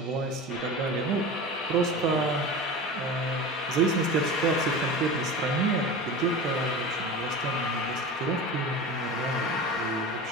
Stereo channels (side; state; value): both; normal; correlation 0.31